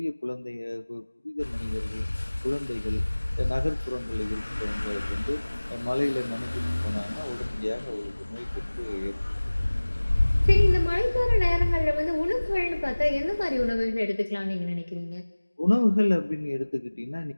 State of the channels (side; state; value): both; inverted; correlation -1.00